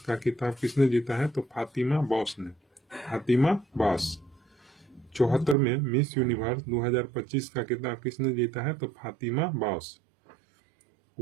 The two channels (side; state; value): left; drops out; at 5.6 s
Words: खिताब किसने जीता है? तो फातिमा बॉस ने। फातिमा बॉस। 74वें मिस यूनिवर्स 2025 का खिताब किसने जीता है? तो Fatima boss.